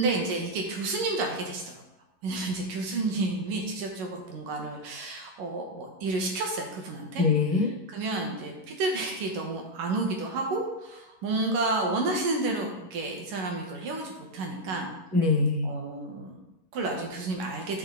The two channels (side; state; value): left; late; 11 ms